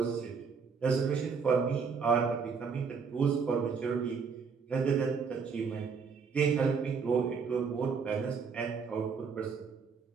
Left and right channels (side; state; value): left; quieter; 5.6 dB